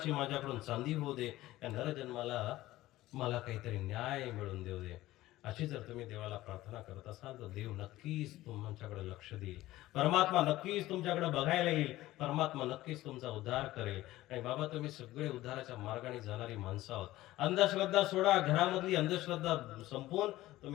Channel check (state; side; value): quieter; right; 16.4 dB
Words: माझ्याकडून चांदी होऊ दे, या नरजन्माला मला काहीतरी न्याय मिळून देऊ दे. अशी जर तुम्ही देवाला प्रार्थना करत असाल तर देव नक्कीच तुमच्याकडे लक्ष देईल. परमात्मा नक्कीच तुमच्याकडे बघायला येईल. परमात्मा नक्कीच तुमचा उद्धार करेल. आणि बाबा, तुम्ही सगळे उद्धाराच्या मार्गाने जाणारी माणसं आहोत. अंधश्रद्धा सोडा, घरामधली अंधश्रद्धा संपवून